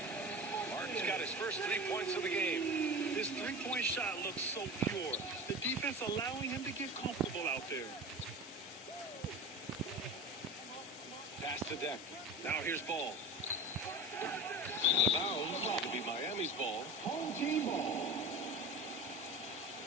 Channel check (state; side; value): normal; both; correlation 0.31